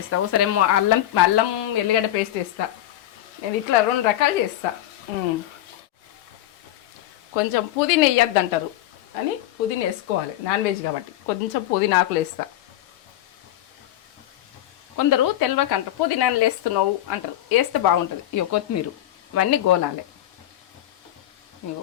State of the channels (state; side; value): quieter; right; 13.4 dB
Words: ఒకసారి ఏమో అల్లం అల్లం ఎల్లిగడ్డ పేస్ట్ వేస్తా. నేను ఇట్లా 2 రకాలు చేస్తా. కొంచెం పుదీనా వేయద్దు అంటారు అని పుదీనా వేసుకోవాలి, నాన్ వెజ్ కాబట్టి కొంచెం పుదీనా ఆకులు వేస్తా. కొందరు తెలవక అంటారు పుదీనాలు వేస్తున్నావు అంటారు, వేస్తే బాగుంటుంది. ఇక కొత్తిమీర ఇవన్నీ గోలాలి. ఇగో